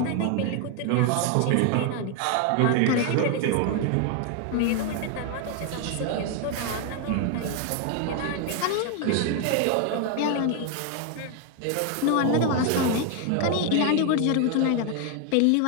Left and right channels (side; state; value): both; different; correlation 0.01